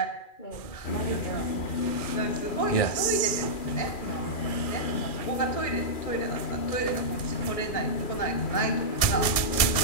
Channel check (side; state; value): right; late; 2.4 ms